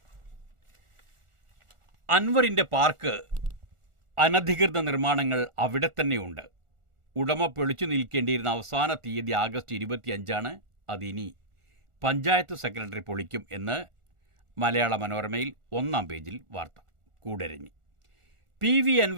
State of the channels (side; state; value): left; late; 1.4 ms